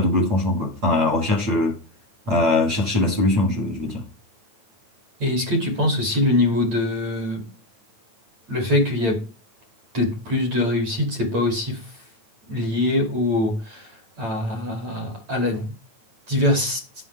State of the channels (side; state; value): left; late; 8.8 ms